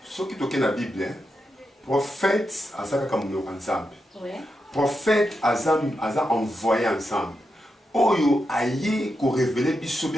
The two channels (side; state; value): both; normal; correlation 0.86